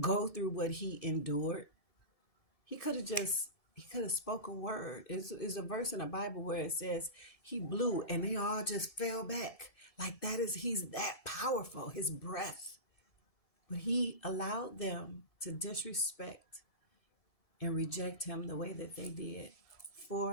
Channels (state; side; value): late; right; 1.7 ms